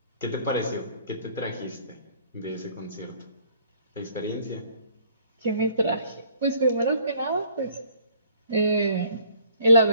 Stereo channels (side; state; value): both; inverted; correlation -0.58